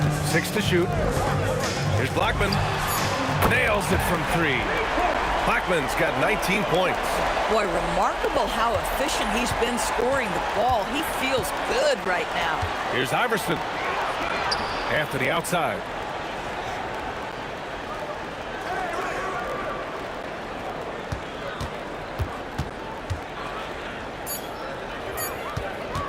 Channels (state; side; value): identical; both; correlation 1.00